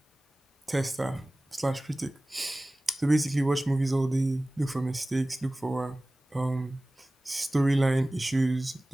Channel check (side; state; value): both; normal; correlation 0.98